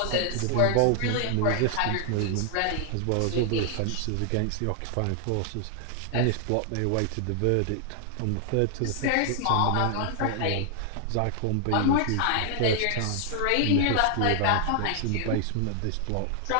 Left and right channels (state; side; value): different; both; correlation 0.00